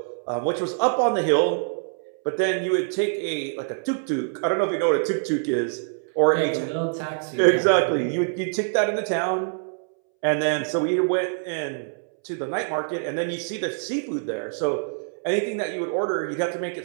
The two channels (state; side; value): silent; left; 62 dB below the other